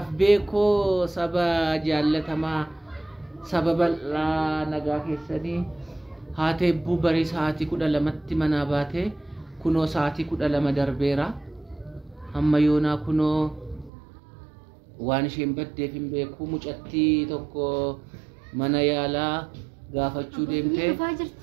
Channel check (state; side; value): drops out; left; at 13.9 s